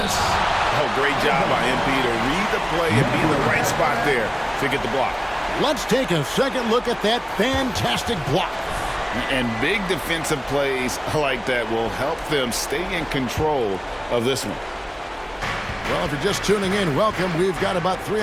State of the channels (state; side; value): identical; both; correlation 1.00